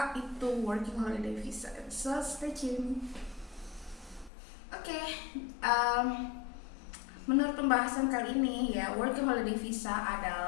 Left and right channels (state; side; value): drops out; right; at 4.3 s